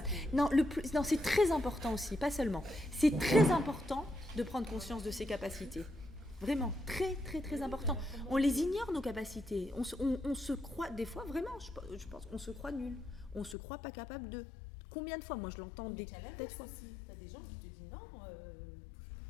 Non, non, c'est très important aussi, pas seulement. C'est très important de prendre conscience de ses capacités. Vraiment, très, très, très important. On les ignore, nos capacités. On se croit, des fois, vraiment, je pense, on se croit nul. On se croit pas capable de... Combien de fois, moi, je l'entends des fois. Tu as des gens qui te disent non,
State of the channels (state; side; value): drops out; right; at 13.6 s